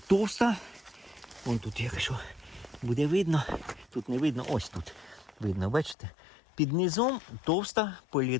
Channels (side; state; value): right; drops out; at 6.0 s